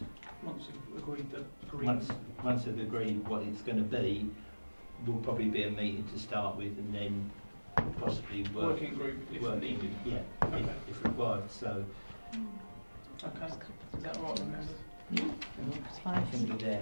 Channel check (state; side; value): inverted; both; correlation -1.00